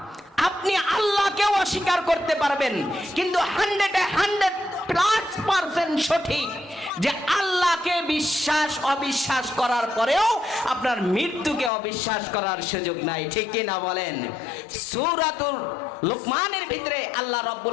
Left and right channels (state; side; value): drops out; right; at 11.7 s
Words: আপনি আল্লাহকে অস্বীকার করতে পারবেন, কিন্তু 100% সঠিক যে আল্লাহকে বিশ্বাস অবিশ্বাস করার পরেও আপনার মৃত্যুকে অবিশ্বাস করার সুযোগ নাই, ঠিক কিনা বলেন? সূরাতুল লুকমানের ভিতরে আল্লাহ